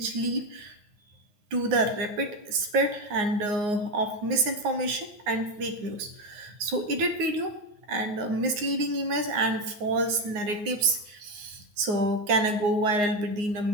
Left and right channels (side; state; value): left; late; 9.6 ms